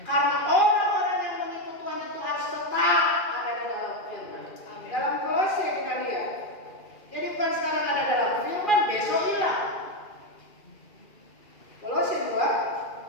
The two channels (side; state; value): right; late; 2.4 ms